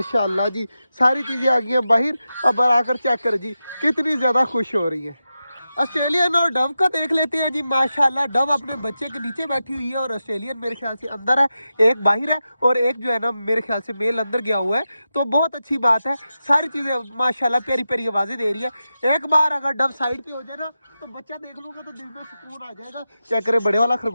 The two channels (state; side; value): inverted; both; correlation -0.91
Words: जी सारी चीज़ें आ गई हैं बाहर। अब आकर चेक करें जी कितनी ज़्यादा खुश हो रही है। ऑस्ट्रेलियन और डव का देख लेते हैं जी। माशाल्लाह डव अपने बच्चे के नीचे बैठी हुई है और ऑस्ट्रेलियन मेरे ख्याल से अंदर है, एक बाहर है और एक जो है ना मेरे ख्याल से मेल अंदर गया हुआ है। तो बहुत अच्छी बात है, सारी चीज़ें माशाल्लाह प्यारी प्यारी आवाज़ें दे रही है। एक बार अगर डव साइड पे हो जाए ना तो बच्चा देख लूँगा तो दिल में सुकून आ जाएगा। चेक करें बड़े वाला